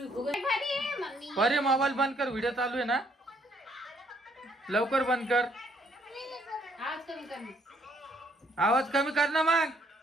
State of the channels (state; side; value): normal; both; correlation 0.68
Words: फुगत. भारी आहे मम्मी. अरे मोबाईल बंद कर, व्हिडिओ चालू आहे ना. लवकर बंद कर. आवाज कमी कर मग. आवाज कमी कर ना मग.